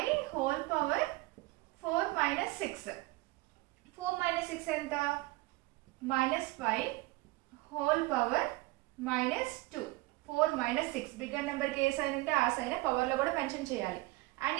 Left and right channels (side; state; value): left; quieter; 21.3 dB